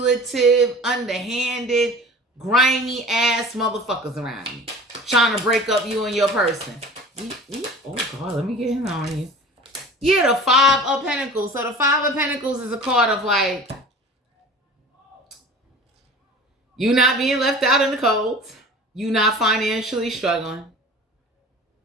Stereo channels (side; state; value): both; normal; correlation 0.40